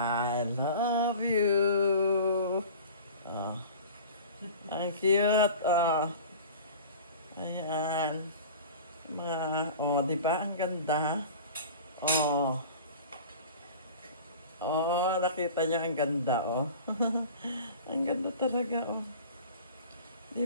love you. Oh. Ang cute, oh. Ayan. Di ba? Ang ganda. Nakita niyo ang ganda, oh. Ang ganda talaga, oh.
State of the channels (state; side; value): inverted; both; correlation -0.39